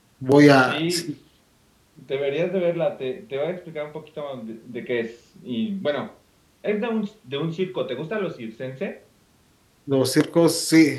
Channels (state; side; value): identical; both; correlation 1.00